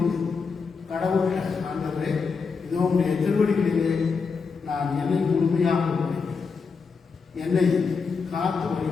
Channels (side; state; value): right; quieter; 5.1 dB